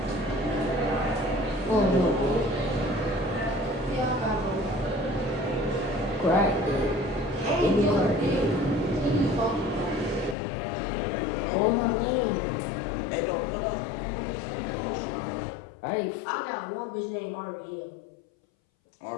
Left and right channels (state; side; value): drops out; right; at 10.4 s